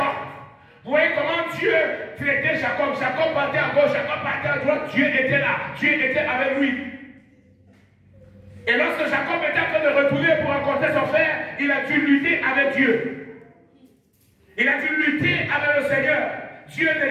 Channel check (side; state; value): both; identical; correlation 1.00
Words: Vous voyez comment Dieu traitait Jacob. Jacob partait à gauche, Jacob partait à droite. Dieu était là. Dieu était avec lui. Et lorsque Jacob était en train de retourner pour rencontrer son frère, il a dû lutter avec Dieu. Il a dû lutter avec le Seigneur. Dieu ne